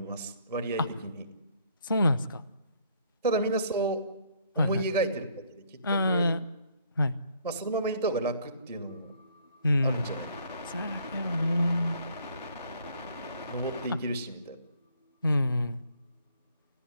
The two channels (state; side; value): inverted; both; correlation -0.63